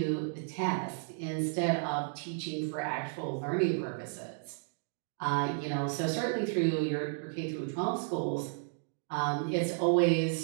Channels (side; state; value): left; silent; digital silence